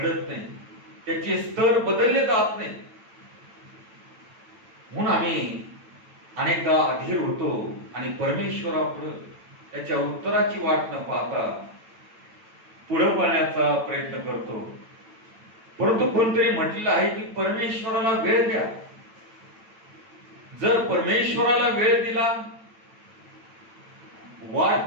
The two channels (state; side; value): late; left; 9.0 ms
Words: नाही, त्याचे स्तर बदलले जात नाही. म्हणून आम्ही अनेकदा अधीर होतो आणि परमेश्वरापुढे त्याच्या उत्तराची वाट न पाहता पुढे पाहण्याचा प्रयत्न करतो. परंतु कोणतरी म्हटलेलं आहे की परमेश्वराला वेळ द्या. जर परमेश्वराला वेळ दिला, वाट